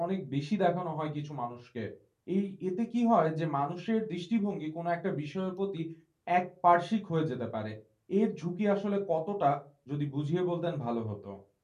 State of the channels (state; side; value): identical; both; correlation 1.00